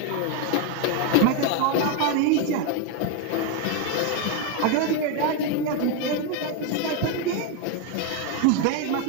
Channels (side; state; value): both; different; correlation 0.02